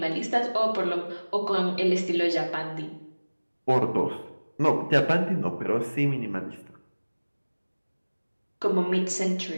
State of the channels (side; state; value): both; inverted; correlation -1.00